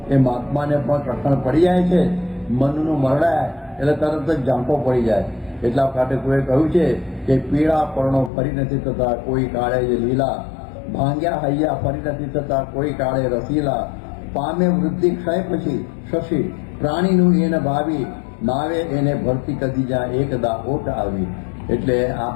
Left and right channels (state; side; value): drops out; right; at 8.3 s